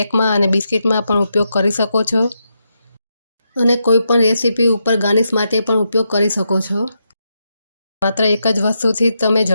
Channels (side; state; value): both; inverted; correlation -0.84